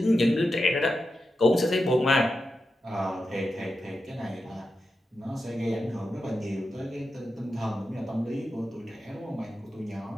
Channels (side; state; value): both; normal; correlation 0.89